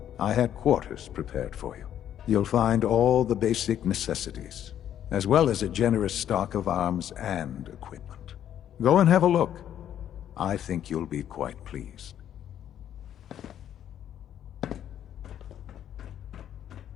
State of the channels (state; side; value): quieter; right; 10.4 dB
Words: I had quarters prepared for you. You'll find all the basic necessities, as well as a generous stock of arms and equipment. Go and have a look. I think you'll be quite pleased.